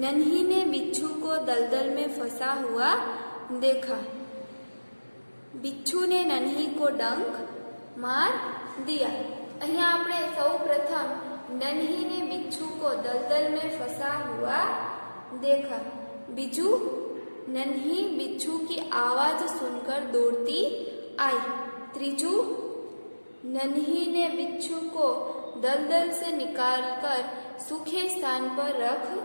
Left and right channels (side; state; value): both; inverted; correlation -1.00